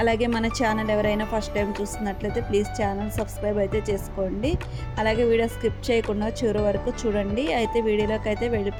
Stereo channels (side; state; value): both; identical; correlation 1.00